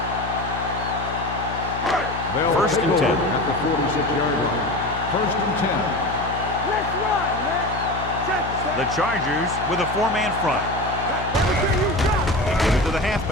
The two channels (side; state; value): left; noise; hum, 9 dB below the sound